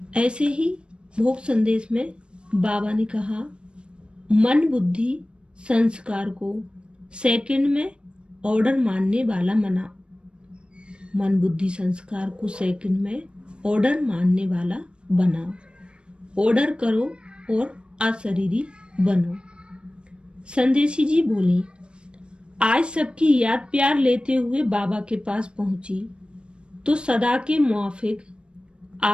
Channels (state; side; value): late; left; 0.055 ms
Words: ऐसे ही भोग संदेश में बाबा ने कहा, मन बुद्धि संस्कार को सेकंड में ऑर्डर मानने वाला बना। मन बुद्धि संस्कार को सेकंड में ऑर्डर मानने वाला बनाओ। ऑर्डर करो और अशरीरी बनो। संदेशी जी बोली, आज सबकी याद प्यार लेते हुए बाबा के पास पहुंची तो सदा के मुआफिक